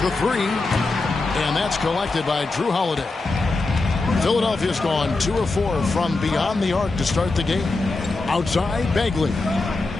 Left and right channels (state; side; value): quieter; right; 3.4 dB